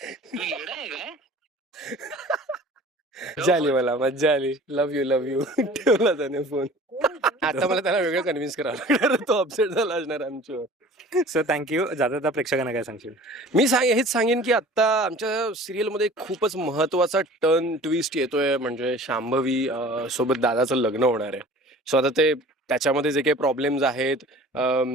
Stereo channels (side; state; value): both; normal; correlation 0.45